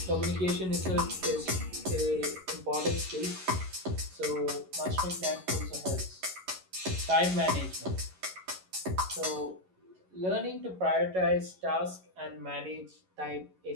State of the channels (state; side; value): late; left; 11 ms